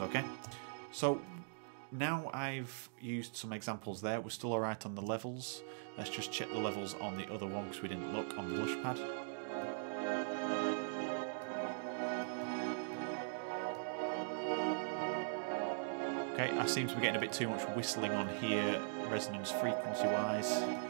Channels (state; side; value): silent; left; digital silence